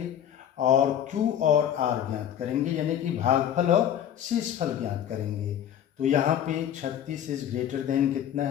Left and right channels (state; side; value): quieter; right; 9.9 dB